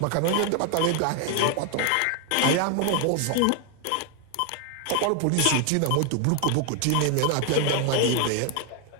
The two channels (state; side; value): different; both; correlation 0.01